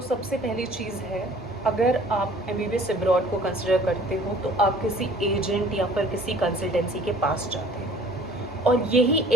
सबसे पहली चीज़ है, अगर आप MBBS अब्रॉड को कंसिडर करते हो तो आप किसी एजेंट या फिर किसी कंसल्टेंसी के पास जाते हो, और यही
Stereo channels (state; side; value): normal; both; correlation 0.52